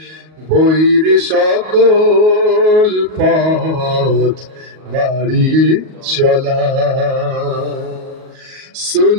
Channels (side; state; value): left; late; 38 ms